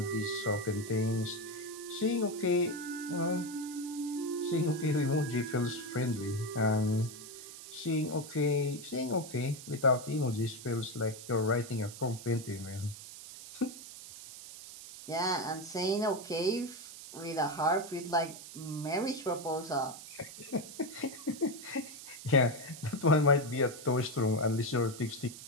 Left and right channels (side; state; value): right; noise; hiss, 13 dB below the sound